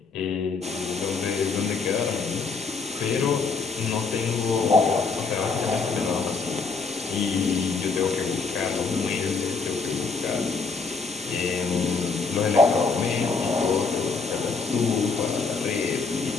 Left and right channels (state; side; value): quieter; right; 4.6 dB